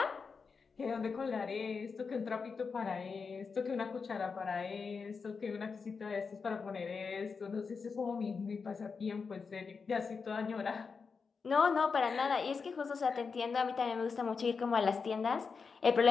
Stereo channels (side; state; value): right; quieter; 5.2 dB